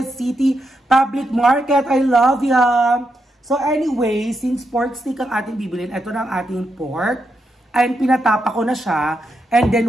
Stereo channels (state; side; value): normal; both; correlation 0.83